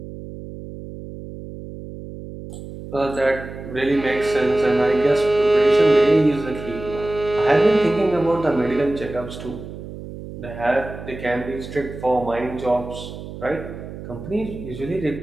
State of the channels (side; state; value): right; noise; hum, 12 dB below the sound